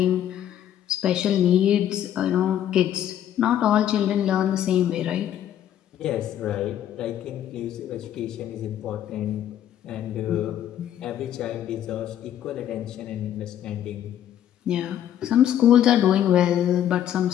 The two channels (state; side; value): quieter; right; 10.8 dB